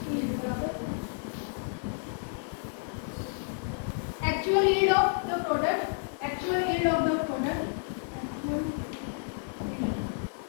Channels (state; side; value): silent; right; 57 dB below the other